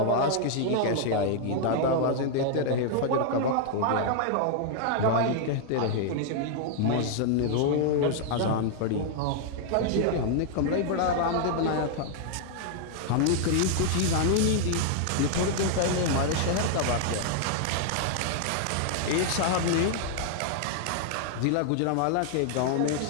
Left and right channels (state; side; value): different; both; correlation -0.01